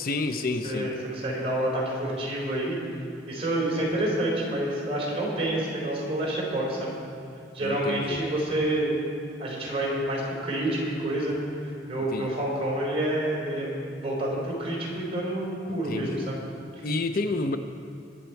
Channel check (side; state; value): both; normal; correlation 0.47